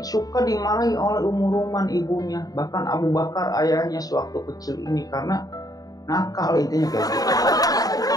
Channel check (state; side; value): late; right; 0.18 ms